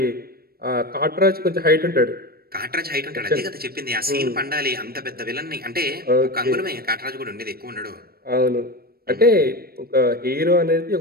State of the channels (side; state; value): left; late; 0.44 ms